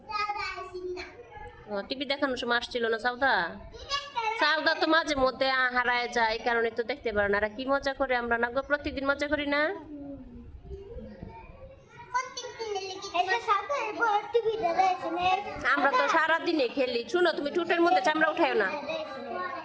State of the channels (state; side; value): identical; both; correlation 1.00